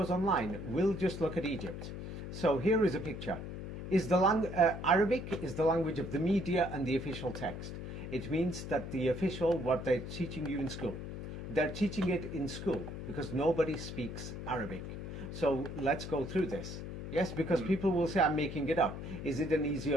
online. We'll just look at Egypt. So here is a picture. Arabic is the language of the media and the official text. It means that the official, what they're teaching you in school, they're teaching it in school because nobody speaks Arabic. So let's go through this. Yes, because people will say I'm making it up. Is it an easy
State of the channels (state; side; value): noise; left; hum, 8 dB below the sound